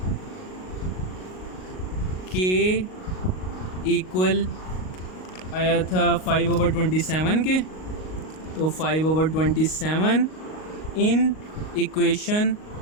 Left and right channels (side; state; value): right; late; 38 ms